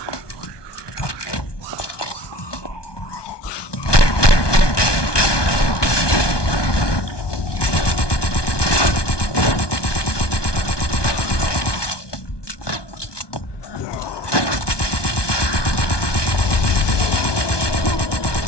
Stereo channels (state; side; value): late; right; 1.2 ms